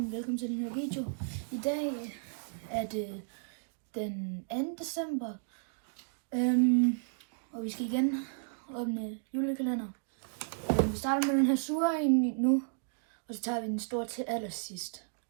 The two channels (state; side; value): silent; left; digital silence